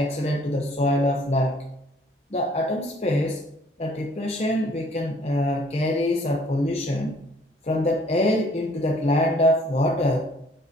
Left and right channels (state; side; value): normal; both; correlation 0.59